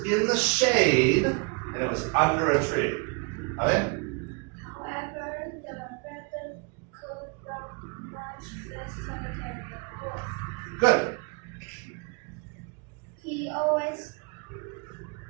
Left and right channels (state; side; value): quieter; left; 32.9 dB